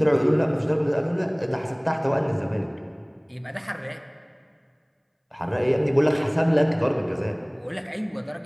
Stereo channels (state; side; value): identical; both; correlation 1.00